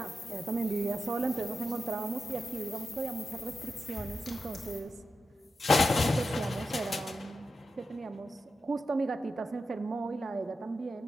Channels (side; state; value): both; normal; correlation 0.89